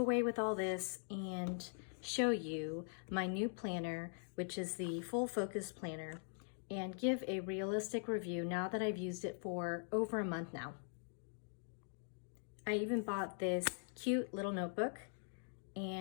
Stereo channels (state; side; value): silent; right; digital silence